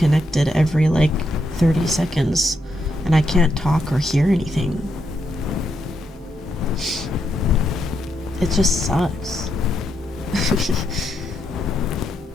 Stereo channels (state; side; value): normal; both; correlation 0.80